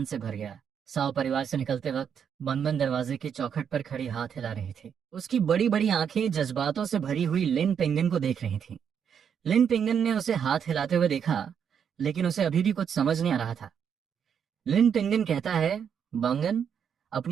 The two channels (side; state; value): left; quieter; 7.7 dB